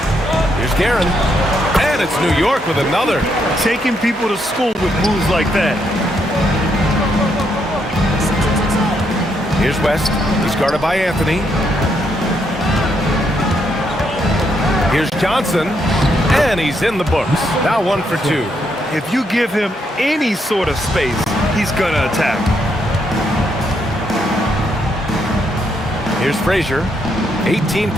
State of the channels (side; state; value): both; normal; correlation 0.76